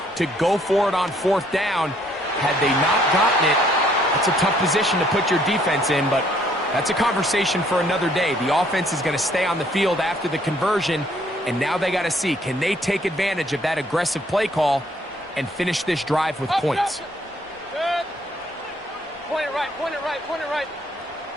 to go for it on fourth down, had they not gotten it, that's a tough position to put your defense in, but that's a conversation for another day. The offense is going to stay on the field after the conversion, and now they got to see, can they take advantage of that aggressive play call and finish this drive with points? Good. Point it right, point it right, point it right.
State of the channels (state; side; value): normal; both; correlation 0.64